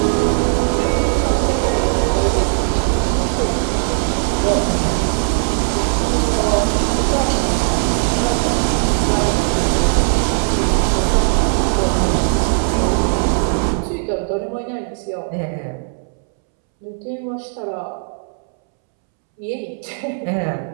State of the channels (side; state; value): left; silent; 67 dB below the other